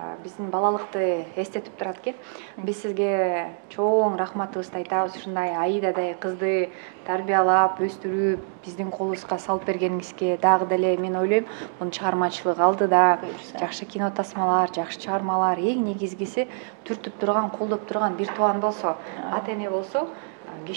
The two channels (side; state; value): left; silent; 62 dB below the other